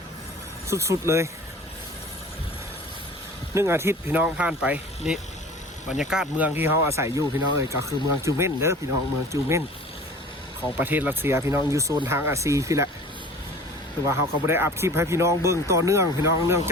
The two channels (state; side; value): normal; both; correlation 0.43